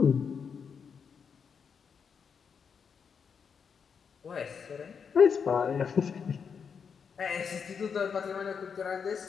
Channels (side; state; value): right; quieter; 6.5 dB